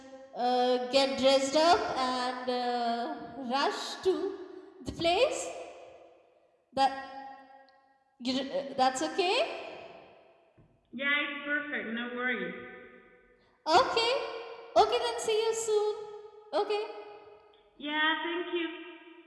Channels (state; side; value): identical; both; correlation 1.00